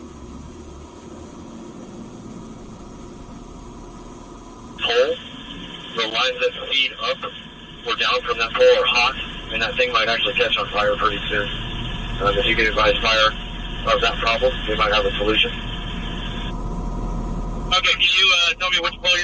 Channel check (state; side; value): identical; both; correlation 1.00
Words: Pole, the lines that feed up or down from that pole are hot, and that thing might actually catch on fire pretty soon. If you can advise fire of that problem, they might have a solution. Okay, can you tell me which pole